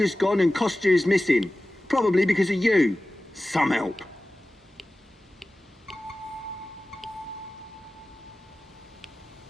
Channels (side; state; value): both; normal; correlation 0.96